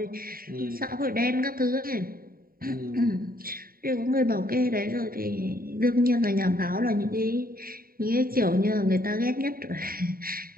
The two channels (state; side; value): late; left; 0.43 ms